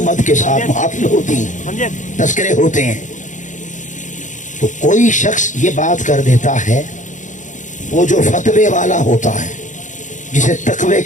مد کے ساتھ محافل ہوتی ہیں، تذکرے ہوتے ہیں. تو کوئی شخص یہ بات کر دیتا ہے، وہ جو فتوے والا ہوتا ہے، جسے تقوی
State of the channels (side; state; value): right; late; 0.36 ms